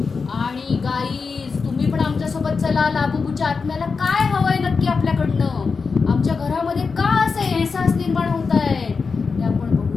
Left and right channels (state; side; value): quieter; right; 4.9 dB